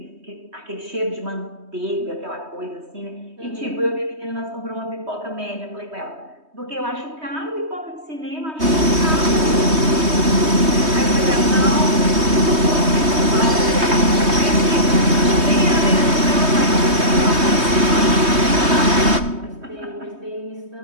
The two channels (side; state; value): left; late; 3.2 ms